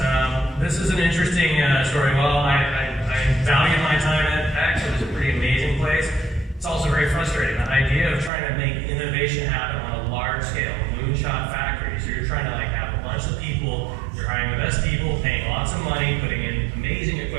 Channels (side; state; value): left; drops out; at 8.3 s